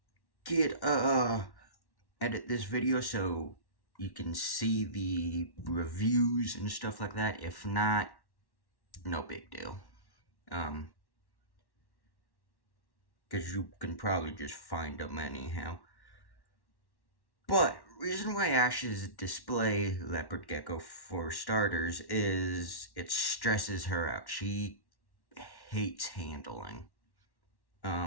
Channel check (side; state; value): right; late; 1.1 ms